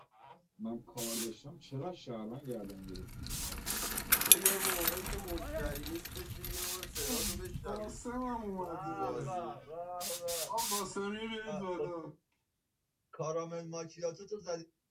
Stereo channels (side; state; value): both; identical; correlation 1.00